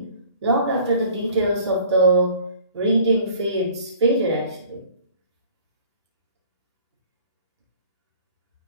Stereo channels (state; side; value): inverted; both; correlation -0.50